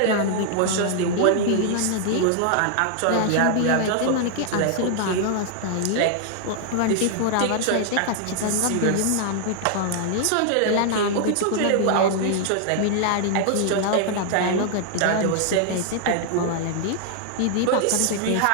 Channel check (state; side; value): different; both; correlation -0.01